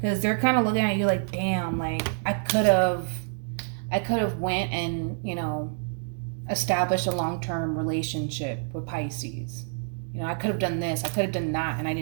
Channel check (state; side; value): silent; left; digital silence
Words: they're kind of looking at you like, damn, like, I could have went and, you know, established a long-term relationship with Pisces. You know, I could have done this, I could have done that, and I